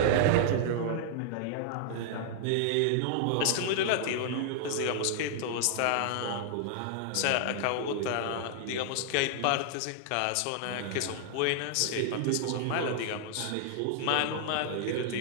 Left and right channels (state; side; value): different; both; correlation -0.01